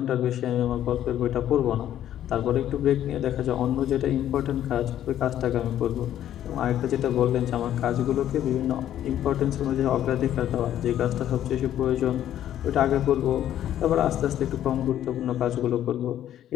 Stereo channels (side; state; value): right; quieter; 11.5 dB